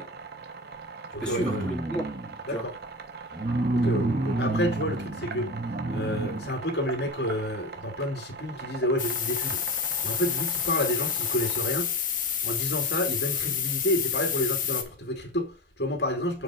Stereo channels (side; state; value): both; normal; correlation 0.25